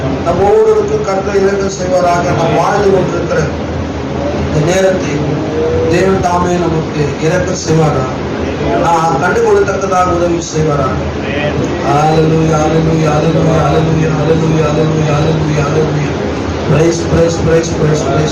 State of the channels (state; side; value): identical; both; correlation 1.00